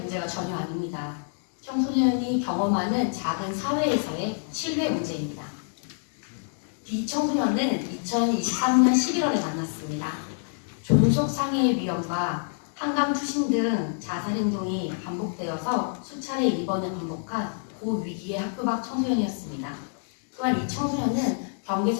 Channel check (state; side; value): silent; right; digital silence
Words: 전혀 아닙니다. 청소년이 경험하는 작은 사회에서의 신뢰 문제입니다. B 청소년은 2023년 11월에 만났습니다. 존속 상해의 위험과 한강 투신 등 자살 행동이 반복되어서 수차례 입원을 반복한 고위기의 학교 밖 청소년이었습니다. 또한 이 청소년은